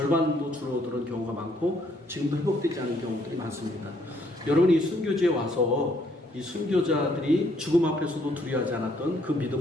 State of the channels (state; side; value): normal; both; correlation 0.68